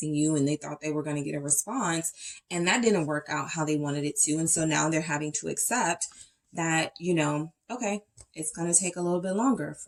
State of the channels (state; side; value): identical; both; correlation 1.00